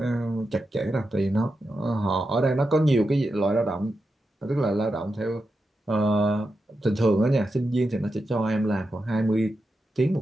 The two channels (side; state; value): both; normal; correlation 0.88